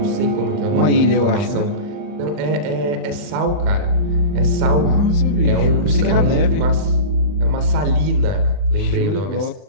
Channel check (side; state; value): left; late; 39 ms